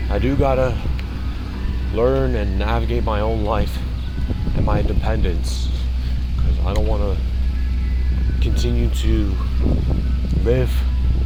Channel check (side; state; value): both; identical; correlation 1.00